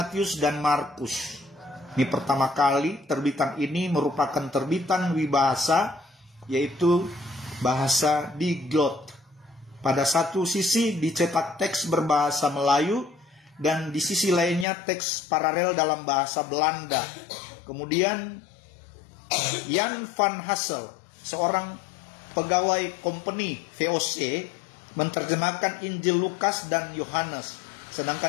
dan Markus. Ini pertama kali terbitan ini merupakan terbitan wibahasa, yaitu bahasa Diglot. Pada satu sisi dicetak teks berbahasa Melayu dan di sisi lainnya teks paralel dalam bahasa Belanda. Kemudian Jan van Hassel, seorang pegawai company VOC, menerjemahkan Injil Lukas dan Yohanes.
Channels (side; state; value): right; drops out; at 14.7 s